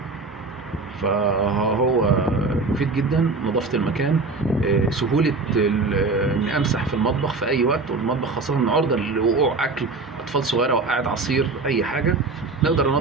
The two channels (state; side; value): quieter; left; 3.8 dB